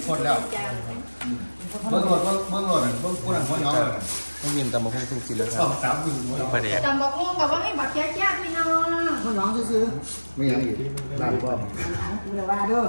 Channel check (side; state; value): both; inverted; correlation -1.00